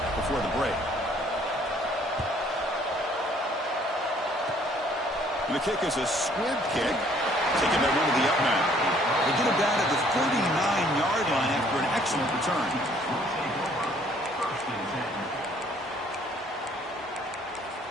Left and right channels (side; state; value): both; normal; correlation 0.61